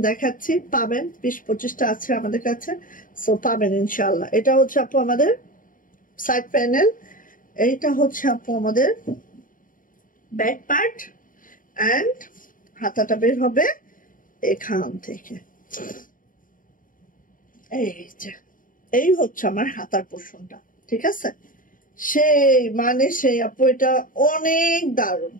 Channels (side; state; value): right; late; 0.39 ms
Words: দেখাচ্ছি, পাবেন 20-25টা আছে আমাদের কাছে, সো পাবেন ইনশাল্লাহ। এটা হচ্ছে আপু আমাদের সাইড প্যানেল, এইটা হচ্ছে আপু আমাদের ব্যাক পার্ট, এন্ড হাতাটা বের হবে এখান থেকে। এই হচ্ছে আমার হাতার পোর্শনটা, ঠিক আছে। সেই আপু এটা অনেক দারুণ।